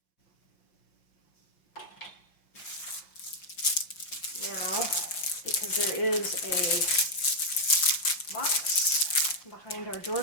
Now, because there is a box behind our door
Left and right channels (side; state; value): right; late; 5.6 ms